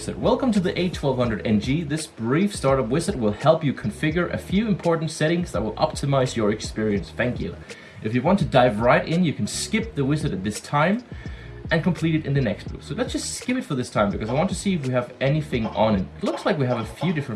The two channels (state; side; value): identical; both; correlation 1.00